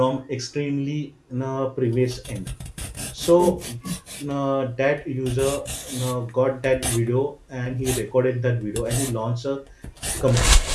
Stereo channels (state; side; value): identical; both; correlation 1.00